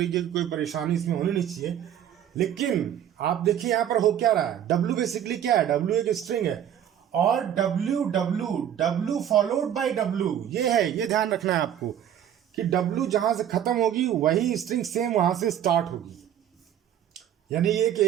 की कोई परेशानी इसमें होनी नहीं चाहिए। लेकिन आप देखिए यहाँ पर हो क्या रहा है, W बेसिकली क्या है, W एक स्ट्रिंग है, और W फॉलोड बाय W ये है, ये ध्यान रखना है आपको कि W जहां से खत्म होगी वही स्ट्रिंग सेम वहां से स्टार्ट होगी, यानी ये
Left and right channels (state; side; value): quieter; left; 10.2 dB